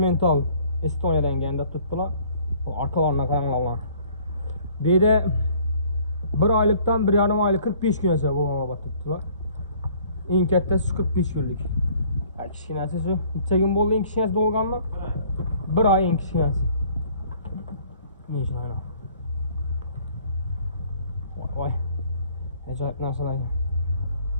Estoniyadan kelgan tutdilar. Arkalarına qaranglar. Deydi 1 oylikdan 1,5 oylik 45 kungacha bo'lgan tutdilar. Eng kattasi 45 kunlik. Kichkinasi shu. Necha kun bo'ldi eng kichkinasi bo'lganmi? 1 oy eng kichkinasi. Necha oyna? Voy. Ajoyib narsalar.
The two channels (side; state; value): both; inverted; correlation -0.57